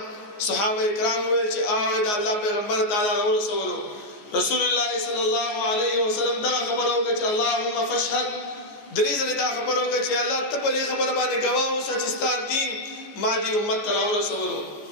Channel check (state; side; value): late; right; 14 ms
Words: صحابه کرام وویل چې د الله پیغمبر تعالی راورسولو. رسول الله صلی الله علیه وسلم دغه خبره وکړه چې اللهم فاشهد، درې ځلې دا خبره وکړه چې الله ته په دې خبره باندې ګواه اوسه چې ستا دین ما دې امت ته راورسولو.